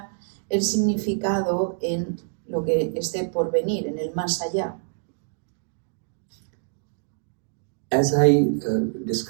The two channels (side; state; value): left; silent; digital silence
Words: el significado en lo que esté por venir, en el más allá. As I